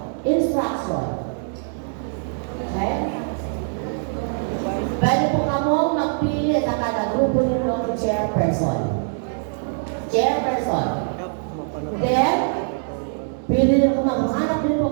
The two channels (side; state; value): left; silent; digital silence